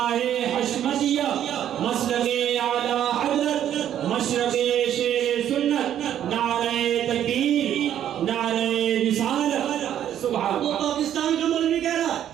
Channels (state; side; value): quieter; left; 10.6 dB